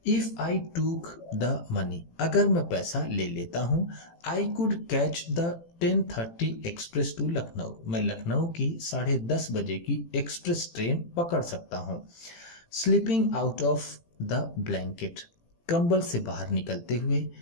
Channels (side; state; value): right; late; 18 ms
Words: If I took the money, अगर मैं पैसा ले लेता हूँ। I could catch the 10:30 express to Lucknow, मैं लखनऊ की 10:30 बजे की एक्सप्रेस ट्रेन पकड़ सकता हूँ। Sleeping out of the blanket, कंबल से बाहर निकलते हुए।